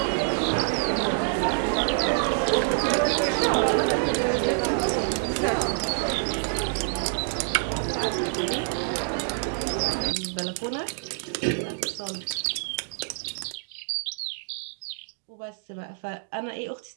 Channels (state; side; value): silent; left; digital silence